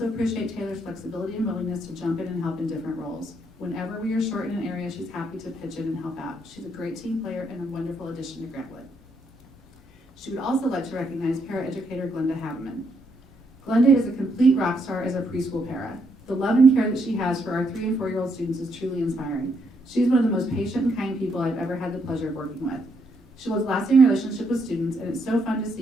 appreciate Taylor's flexibility and willingness to jump in and help in different roles. Whenever we are short in an area, she's happy to pitch in and help out. She's a great team player and a wonderful addition to Grant Wood. She would also like to recognize paraeducator Glenda Haveman. Glenda is a complete rock star as a preschool para. The love and care that she has for our 3- and 4-year-old students is truly inspiring. She's one of the most patient and kind people I've ever had the pleasure of working with. She builds lasting relationships with students, and it's so fun to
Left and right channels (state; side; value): normal; both; correlation 0.75